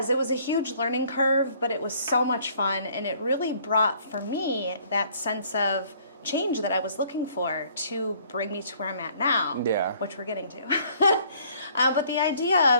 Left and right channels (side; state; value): both; inverted; correlation -0.60